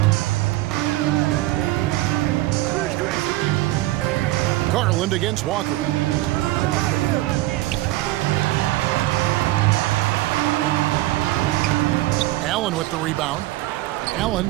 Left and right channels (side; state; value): left; quieter; 17.4 dB